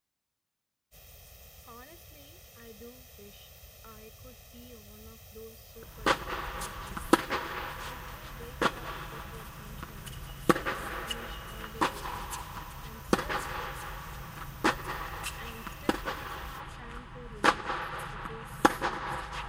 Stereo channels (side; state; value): both; identical; correlation 1.00